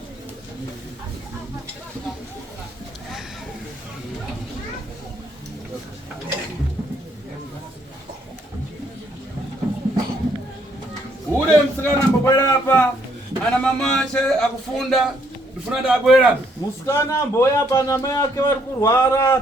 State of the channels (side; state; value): both; normal; correlation 0.69